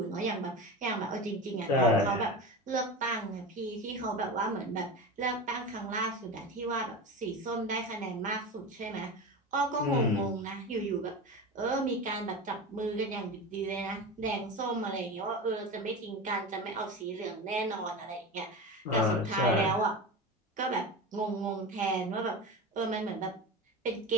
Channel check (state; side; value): normal; both; correlation 0.26